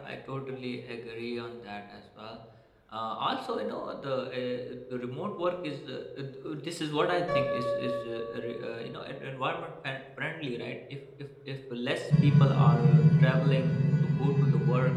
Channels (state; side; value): identical; both; correlation 1.00